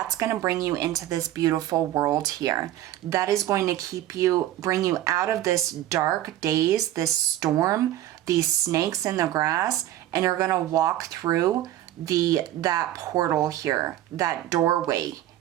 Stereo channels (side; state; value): left; quieter; 13.4 dB